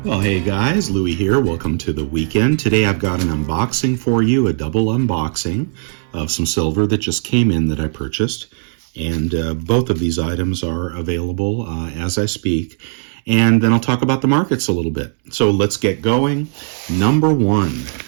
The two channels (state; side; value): silent; left; digital silence